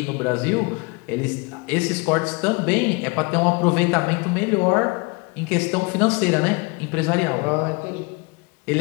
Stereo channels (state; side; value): quieter; right; 28.4 dB